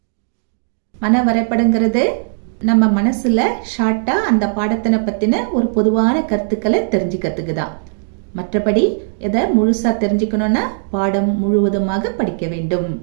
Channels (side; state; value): left; silent; 68 dB below the other